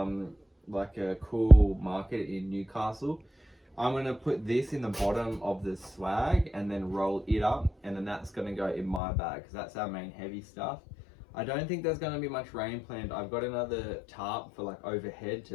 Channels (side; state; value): right; drops out; at 9.0 s